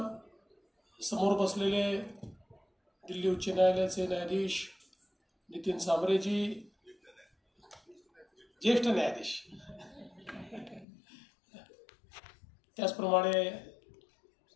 समोर बसलेले दिल्ली उच्च न्यायालयाचे न्यायाधीश नितीन सांबरेजी, ज्येष्ठ न्यायाधीश, त्याचप्रमाणे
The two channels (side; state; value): right; drops out; at 10.9 s